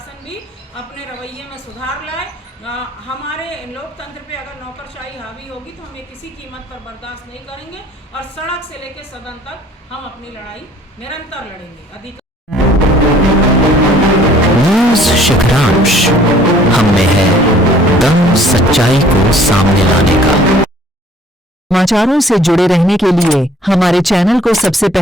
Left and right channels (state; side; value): normal; both; correlation 0.56